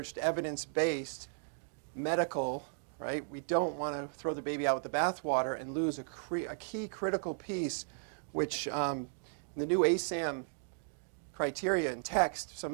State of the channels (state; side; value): silent; left; digital silence